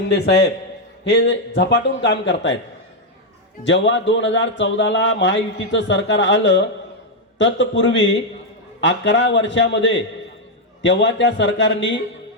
साहेब हे झपाटून काम करतायत। जेव्हा 2014ला महायुतीचं सरकार आलं तत्पूर्वी 11 वर्षामध्ये तेव्हा त्या सरकारने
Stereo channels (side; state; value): both; normal; correlation 0.00